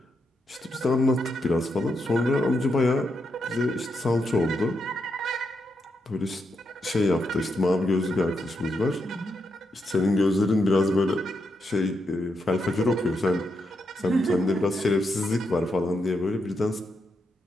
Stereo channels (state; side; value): normal; both; correlation 0.82